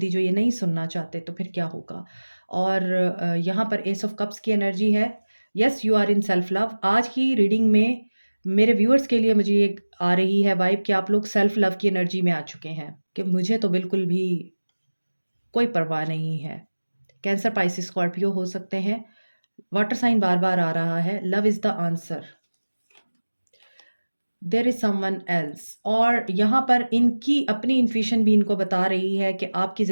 जो ये नहीं सुनना चाहते तो फिर क्या होगा। और यहाँ पर एस ऑफ कप्स की एनर्जी है। Yes, you are in self love. आज की रीडिंग में मेरे व्यूअर्स के लिए मुझे ये आ रही है वाइब कि आप लोग सेल्फ लव की एनर्जी में आ चुके हैं, कि मुझे तो बिल्कुल भी कोई परवाह नहीं है। कैंसर, पाइसिस, स्कॉर्पियो हो सकते हैं। वाटर साइन बार बार आ रहा है। Love is the answer. There is someone else, और यहाँ पर इनकी अपनी इंट्यूशन भी इनको बता रही है कि आपकी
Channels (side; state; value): both; inverted; correlation -1.00